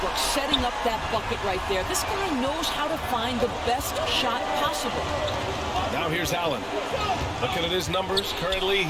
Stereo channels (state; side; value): identical; both; correlation 1.00